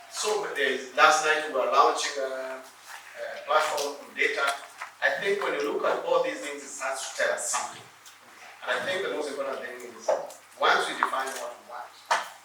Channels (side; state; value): both; identical; correlation 1.00